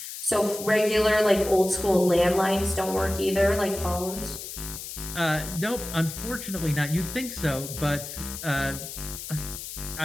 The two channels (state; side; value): noise; left; hiss, 9 dB below the sound